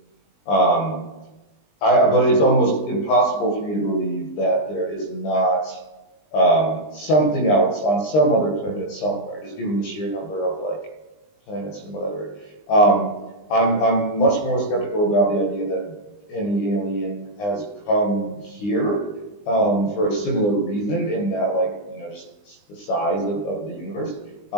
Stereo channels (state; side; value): late; right; 20 ms